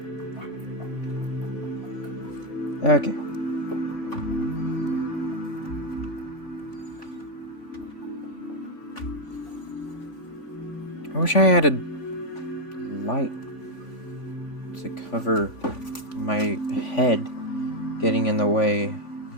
Okay. I wish I had a light to cover my head getting in the way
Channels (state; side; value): late; right; 3.5 ms